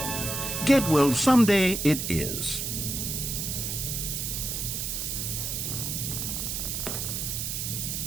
Get Well Someday it is.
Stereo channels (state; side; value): noise; right; hiss, 2 dB below the sound